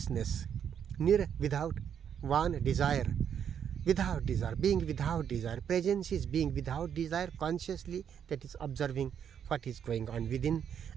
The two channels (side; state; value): left; quieter; 8.4 dB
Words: Nir, without, van, desire. Without desire, being without desire. Presence is being without desire consciously, that is observing what is going on within,